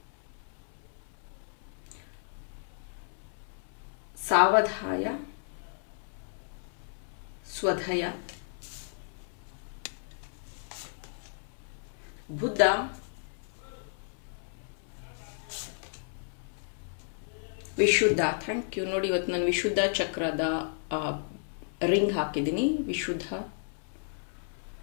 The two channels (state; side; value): silent; right; 56 dB below the other